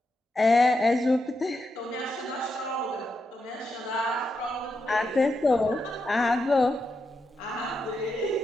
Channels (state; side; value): normal; both; correlation 0.84